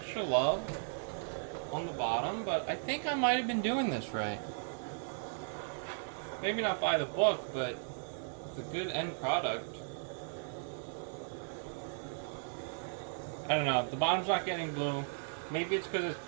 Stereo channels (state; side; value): silent; left; digital silence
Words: love on the bottom. But I think I might have been doing this right. Maybe not by the book, but the good end product. I don't know. The bottom's not getting blue. Maybe it's because it's